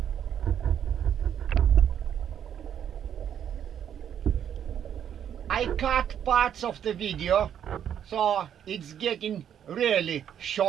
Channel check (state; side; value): quieter; left; 9.2 dB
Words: I cut parts of the video, so it's getting really